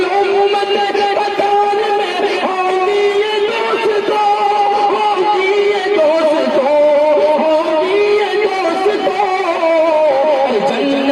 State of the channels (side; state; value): both; identical; correlation 1.00